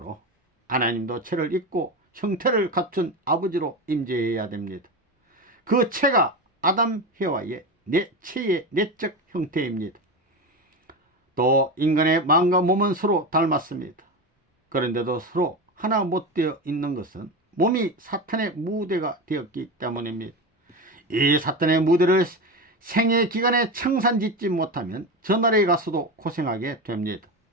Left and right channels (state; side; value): normal; both; correlation 0.21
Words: 하나님도 채를 입고 형태를 갖춘 아버지로 임재해야 됩니다. 그 채가 아담, 해와의 채의 내적 형태입니다. 또 인간의 마음과 몸은 서로 닮았습니다. 그런데도 서로 하나 못 되어 있는 것은 몸이 사탄의 무대가 되었기 때문입니다. 이 사탄의 무대를 생애 기간에 청산짓지 못하면 저 나라에 가서도 고생하게 됩니다.